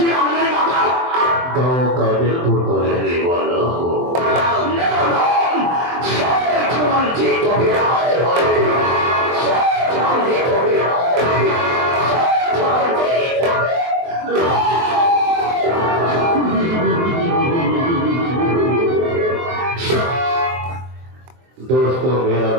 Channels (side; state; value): left; late; 23 ms